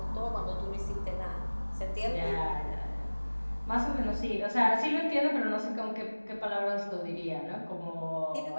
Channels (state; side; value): inverted; both; correlation -1.00